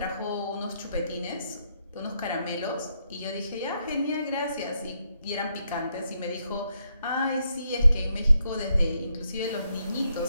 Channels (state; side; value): inverted; both; correlation -0.78